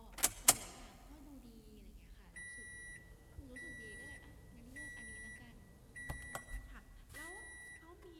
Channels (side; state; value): both; identical; correlation 1.00